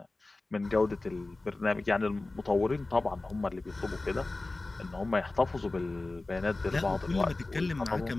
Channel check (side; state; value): right; quieter; 3.1 dB